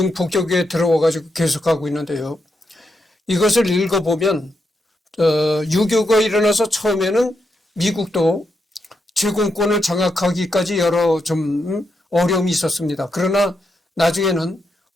폭격에 들어와가지고 계속하고 있는데요. 이것을 읽어보면 6.25가 일어나서 처음에는 미국도 제공권을 장악하기까지 여러 좀 어려움이 있었습니다. 그러나 나중에는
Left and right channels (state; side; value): normal; both; correlation 0.83